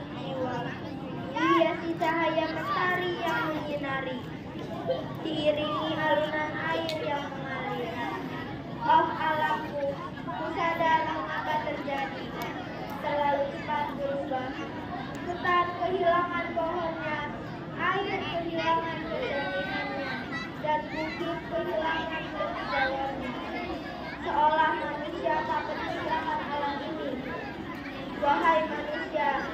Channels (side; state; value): both; identical; correlation 1.00